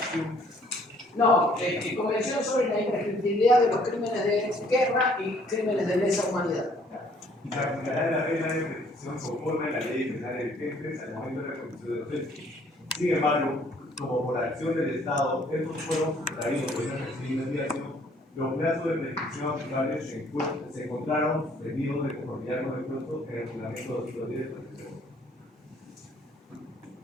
No, Convención sobre la imprescriptibilidad de los crímenes de guerra y crímenes de lesa humanidad. Y se aplicará la regla de prescripción conforme a la ley penal vigente al momento de la comisión de los hechos. Sin embargo, como por acción del Estado, estos fueron sustraídos por una investigación, los plazos de prescripción aplicables se encontraron suspendidos de conformidad con el plazo en el reglamento 210 de prescripción.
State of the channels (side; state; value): both; normal; correlation 0.61